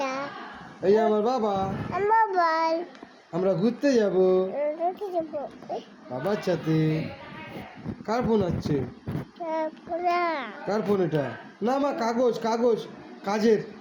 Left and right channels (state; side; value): identical; both; correlation 1.00